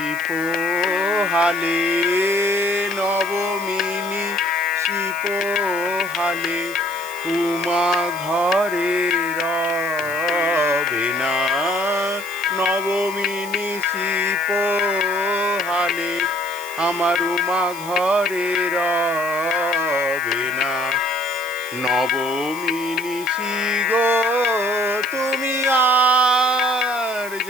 পোহালে, নবমী নিশি পোহালে উমা ঘরে রবে না। নবমী নিশি পোহালে আমার উমা ঘরে রবে না। নবমী নিশি গো তুমি আর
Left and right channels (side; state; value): right; noise; hiss, 15 dB below the sound